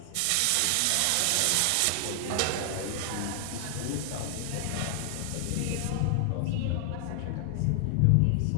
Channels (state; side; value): different; both; correlation 0.00